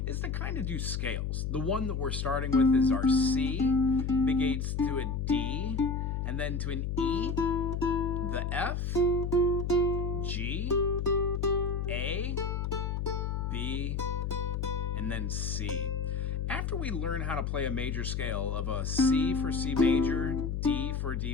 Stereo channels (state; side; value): noise; left; hum, 1 dB below the sound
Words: is to kind of do scales. The one that we're starting with is our C, big 8s to a D, and then to an E, the F, G, A, B, and then C. After we learn how to play a major scale of a C for C major, D for